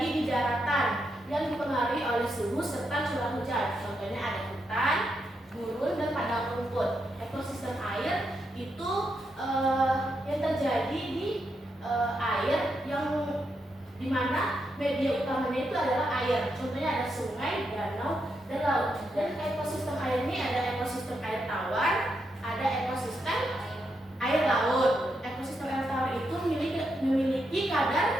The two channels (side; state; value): both; normal; correlation 0.82